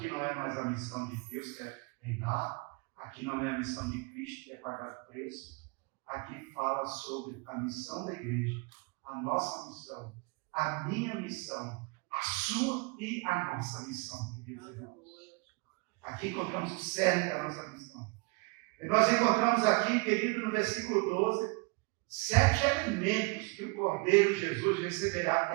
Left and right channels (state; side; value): quieter; left; 29.1 dB